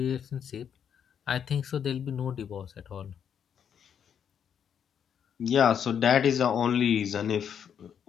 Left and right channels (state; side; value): quieter; right; 8.2 dB